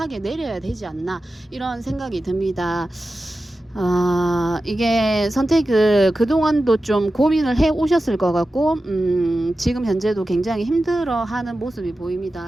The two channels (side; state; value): both; normal; correlation 0.93